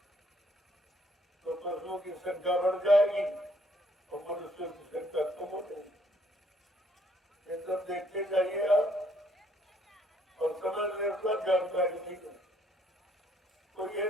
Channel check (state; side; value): normal; both; correlation 0.67